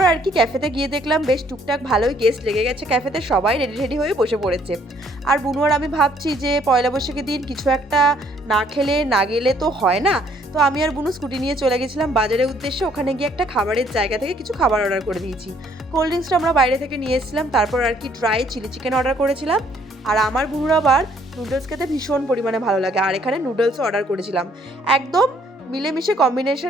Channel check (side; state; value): both; normal; correlation 0.64